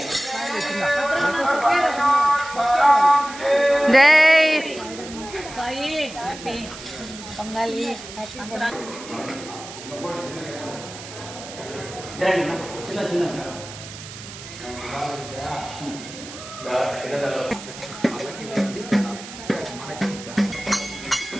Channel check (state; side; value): noise; right; hiss, 13 dB below the sound